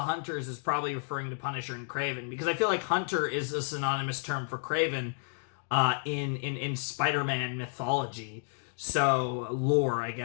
Hunters is probably referring to Punisher and Kraven, because I feel like Hunter is a synonymous term for Kraven in Spider-Man mythology. So, lore, I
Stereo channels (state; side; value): silent; right; digital silence